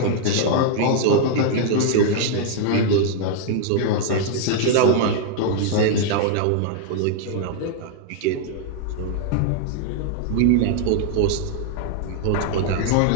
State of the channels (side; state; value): both; different; correlation 0.00